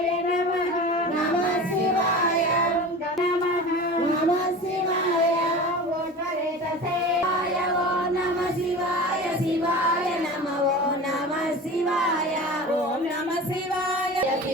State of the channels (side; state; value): both; normal; correlation 0.34